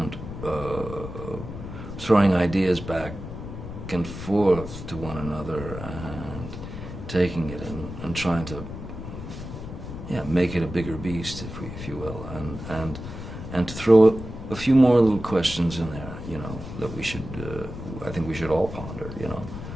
throwing ideas back and forth to one another and taking it and trying to make it a bigger beast, if you will, and to throw a few more little questions in there, that we should I think we should all ponder,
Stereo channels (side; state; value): left; noise; rumble, 9 dB below the sound